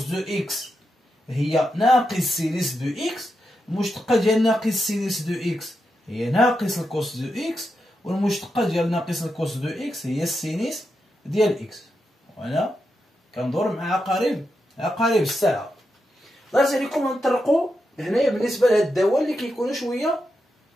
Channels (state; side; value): normal; both; correlation 0.86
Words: دو اكس هي ناقص سينيس دو اكس. المشتقة ديال ناقص سينيس دو اكس هي ناقص الكوس دو اكس، والمشتقة ديال ناقص الكوس دو اكس هي السينيس ديال اكس. وانا كندور مع عقارب الساعة. الله يرضي عليكم غنطرقوا هنايا بالنسبة لهاد الدوال اللي كيكونوا شوية